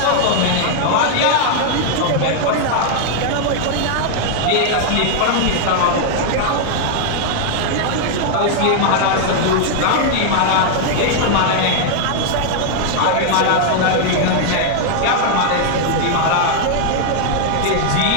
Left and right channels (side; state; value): both; different; correlation 0.00